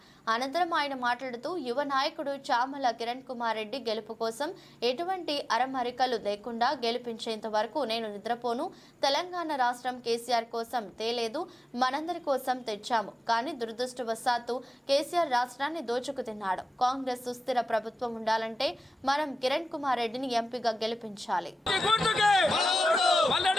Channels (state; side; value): normal; both; correlation 0.95